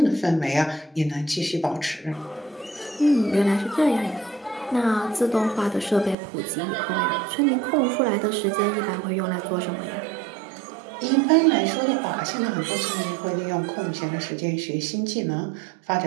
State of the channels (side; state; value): left; drops out; at 6.2 s